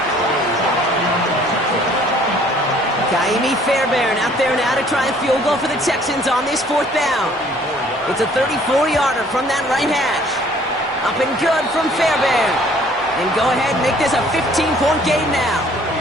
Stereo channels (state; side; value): normal; both; correlation 0.57